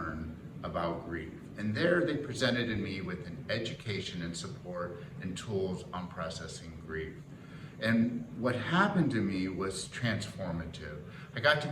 about grief. And there they presented me with an education and support and tools on processing grief. And what happened to me was transformative. I got to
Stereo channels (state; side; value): identical; both; correlation 1.00